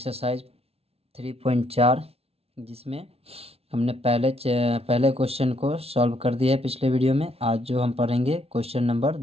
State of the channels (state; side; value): late; left; 0.29 ms